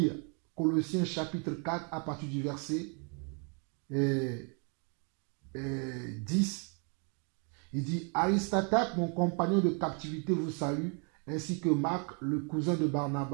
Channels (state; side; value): quieter; left; 37.7 dB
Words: Colossiens chapitre 4 à partir du verset 10. Il dit, Aristote, mon compagnon de captivité, vous salue, ainsi que Marc, le cousin de